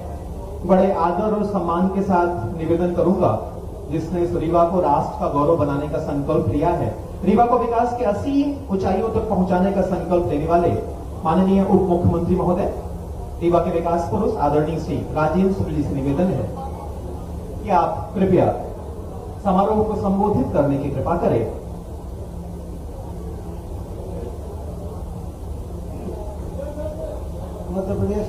बड़े आदर और सम्मान के साथ निवेदन करूंगा, जिसने इस रीवा को राष्ट्र का गौरव बनाने का संकल्प लिया है, रीवा को विकास के असीम ऊंचाइयों तक पहुंचाने का संकल्प लेने वाले माननीय उप मुख्यमंत्री महोदय, रीवा के विकास पुरुष आदरणीय श्री राजेंद्र शुक्ल जी से निवेदन है कि आप कृपया समारोह को संबोधित करने की कृपा करें। मध्य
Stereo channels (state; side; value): identical; both; correlation 1.00